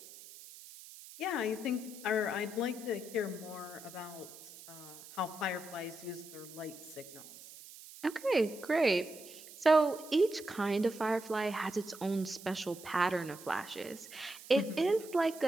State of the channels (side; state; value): right; noise; hiss, 17 dB below the sound